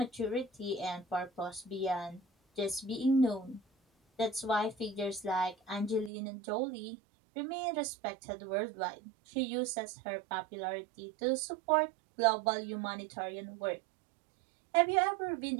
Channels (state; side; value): drops out; left; at 6.1 s